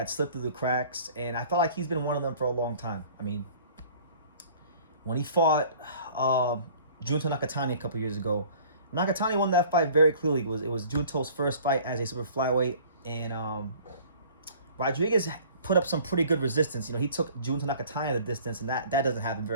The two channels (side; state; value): both; inverted; correlation -0.50